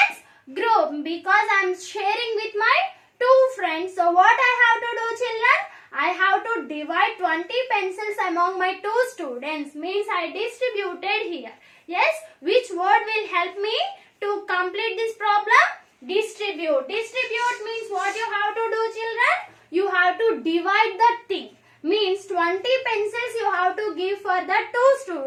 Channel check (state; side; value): identical; both; correlation 1.00